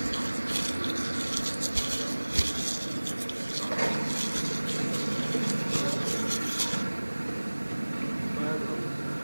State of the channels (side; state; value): both; inverted; correlation -1.00